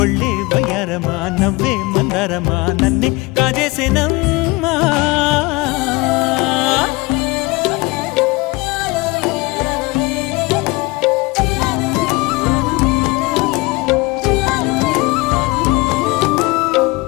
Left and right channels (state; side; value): quieter; right; 23.5 dB